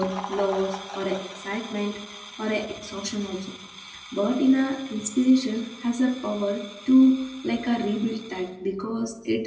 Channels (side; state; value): both; identical; correlation 1.00